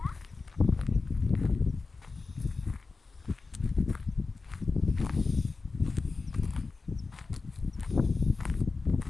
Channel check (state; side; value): quieter; right; 4.1 dB